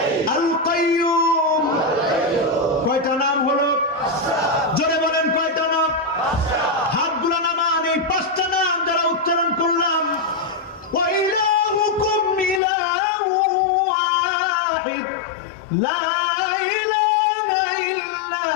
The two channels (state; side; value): drops out; right; at 12.6 s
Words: আল কাইয়ুম। কয়টা নাম হলো? জোরে বলেন কয়টা নাম? হাতগুলো নামান। এই 5টা নাম যারা উচ্চারণ করলাম, ওয়া ইলাহুকুম ইলাহু ওয়াহিদ লা